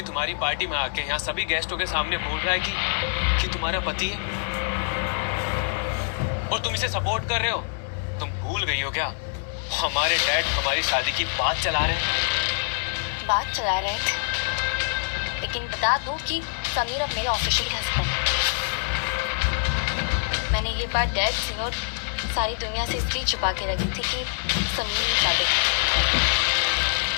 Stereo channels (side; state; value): right; silent; 62 dB below the other